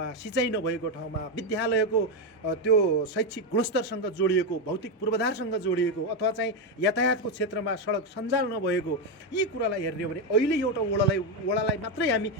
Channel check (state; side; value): normal; both; correlation 0.07